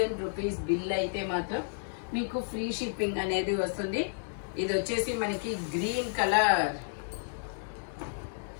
rupees bill అయితే మాత్రం మీకు ఫ్రీ షిప్పింగ్ అనేది వస్తుంది. ఇది వచ్చేసి మనకి గ్రీన్ కలర్.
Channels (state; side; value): silent; right; digital silence